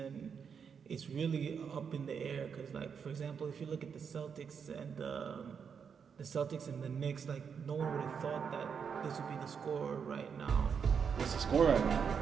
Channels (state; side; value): quieter; left; 6.7 dB